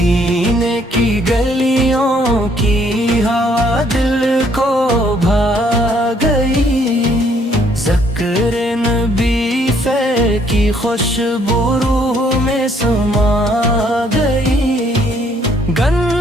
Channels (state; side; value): normal; both; correlation 0.66